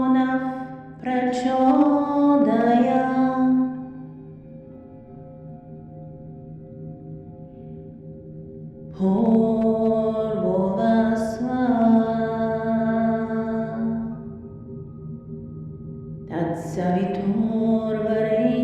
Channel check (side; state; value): both; identical; correlation 1.00